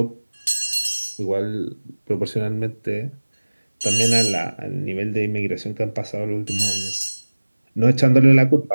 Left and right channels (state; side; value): inverted; both; correlation -1.00